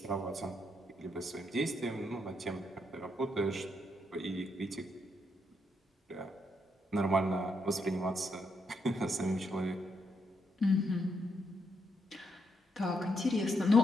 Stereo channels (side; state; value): both; normal; correlation 0.78